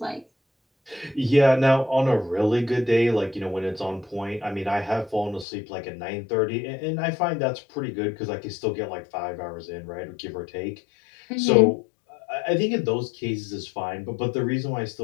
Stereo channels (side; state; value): right; drops out; at 5.5 s